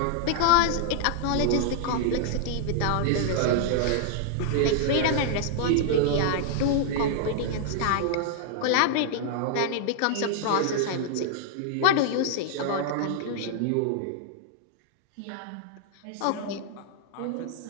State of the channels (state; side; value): different; both; correlation -0.01